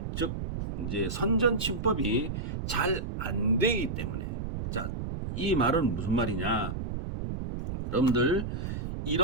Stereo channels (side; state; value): right; noise; rumble, 4 dB below the sound